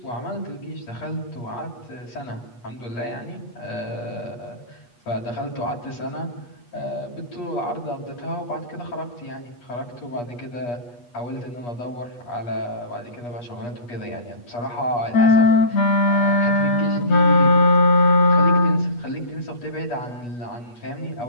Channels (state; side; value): late; right; 8.3 ms